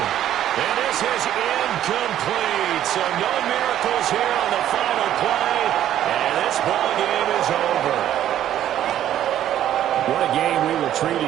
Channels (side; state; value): left; quieter; 11.6 dB